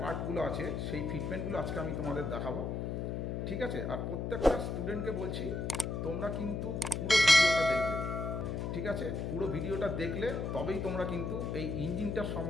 পার্টগুলো আছে সেই ফিটমেন্টগুলো আজকে আমি তোমাদের দেখাবো, ঠিক আছে। আর প্রত্যেকটা স্টুডেন্টকে বলছি তোমরা কিন্তু পুরো ভিডিওটা দেখবে, ঠিক আছে। পুরো ভিডিওটা দেখলে তবেই তোমরা কিন্তু এই ইঞ্জিনটার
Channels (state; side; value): noise; left; hum, 2 dB below the sound